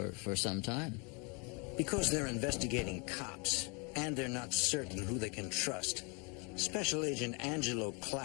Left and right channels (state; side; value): quieter; right; 32.7 dB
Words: some time. Because they're investigating cops, and they're not certain who they can trust, Special Agent Angelo